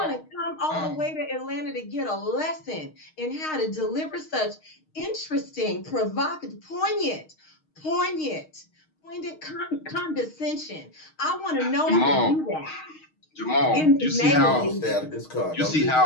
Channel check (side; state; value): right; late; 6.4 ms